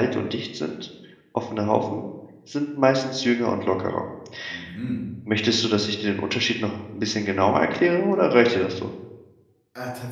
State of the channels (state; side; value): identical; both; correlation 1.00